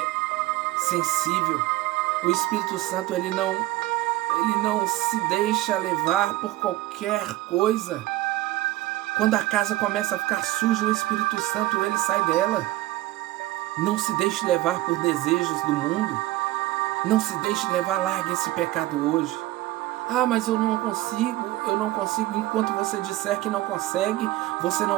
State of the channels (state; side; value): quieter; left; 17.0 dB